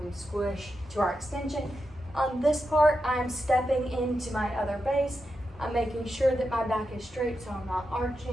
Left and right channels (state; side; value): normal; both; correlation 0.87